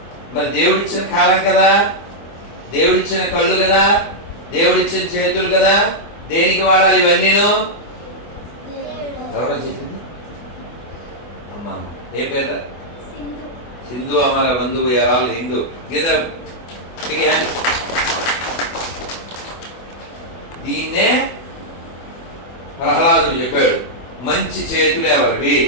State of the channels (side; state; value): right; late; 24 ms